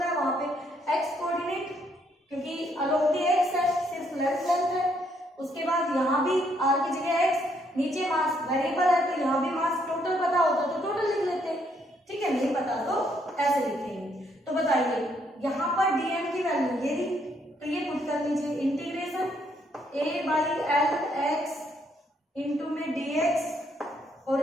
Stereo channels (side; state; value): both; normal; correlation 0.71